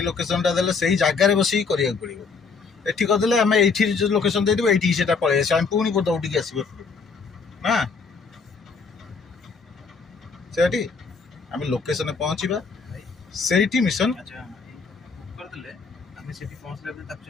ଲୋକେସନଟା ଦେଲେ ସେଇ ଜାଗାରେ ବସିକି କରିବାକୁ ପଡ଼ିବ। ଏଠି କରିଦେଲେ ଆମେ ଏଇଠି ଯୋଉ ଲୋକେସନ ଦେଇଦେବୁ ଏଇଠିକି ସେଟା ପଳେଇ ଆସିବ, ଆମେ ପୁଣି ଦୌଡ଼ିକି ଆସିବ ନା। ସେଠି ଆମେ ଲୋକେସନରେ ପହଞ୍ଚିବା, ସେଇଠି ମିଶନ କରିଦେଲେ ଆମେ ସେଠି ପହଞ୍ଚିଲା ପରେ ତାକୁ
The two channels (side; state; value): right; quieter; 4.9 dB